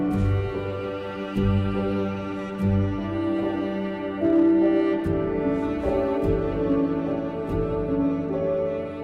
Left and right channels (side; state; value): both; identical; correlation 1.00